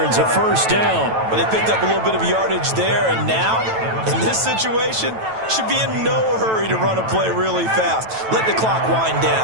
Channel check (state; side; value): late; left; 9.1 ms